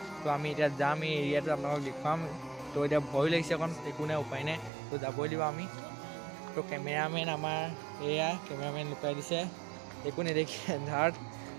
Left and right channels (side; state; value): left; drops out; at 4.7 s